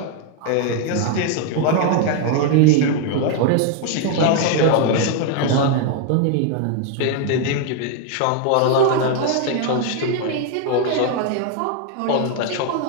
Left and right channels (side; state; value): both; different; correlation 0.00